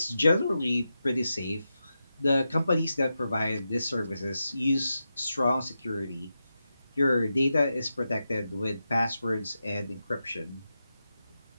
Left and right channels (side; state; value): both; inverted; correlation -0.89